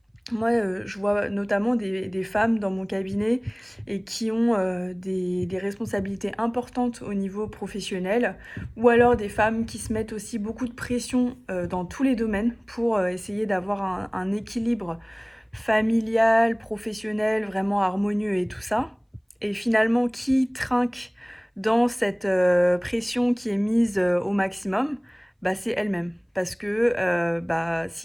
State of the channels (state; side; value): identical; both; correlation 1.00